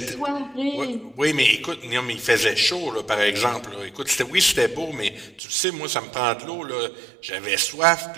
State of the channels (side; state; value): left; drops out; at 5.4 s